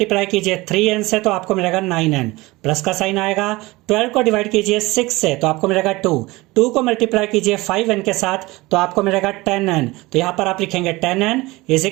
कीजिए 3n से तो आपको मिलेगा 9n। प्लस का साइन आएगा। 12 को डिवाइड कीजिए 6 से तो आपको मिलेगा 2। 2 को मल्टीप्लाई कीजिए 5n के साथ तो आपको मिलेगा 10n। तो यहाँ पर आप लिखेंगे 10n is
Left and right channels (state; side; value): quieter; left; 21.1 dB